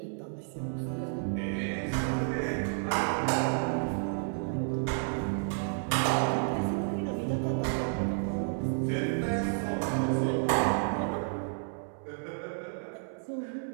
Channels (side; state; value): left; silent; digital silence